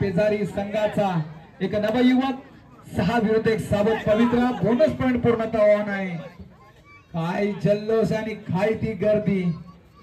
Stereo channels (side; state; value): both; identical; correlation 1.00